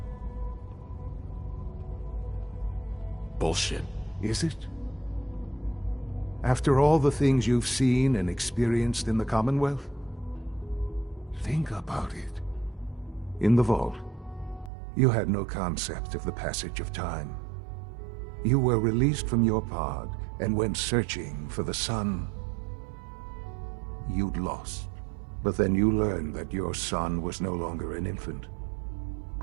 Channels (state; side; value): drops out; left; at 14.7 s